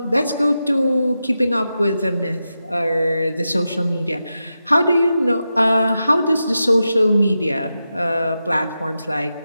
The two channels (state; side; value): inverted; both; correlation -0.90